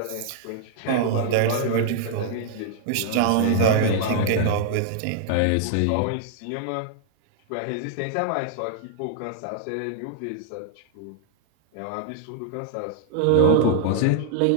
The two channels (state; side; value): different; both; correlation -0.01